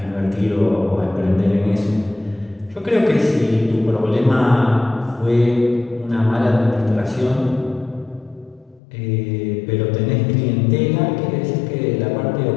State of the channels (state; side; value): drops out; right; at 8.8 s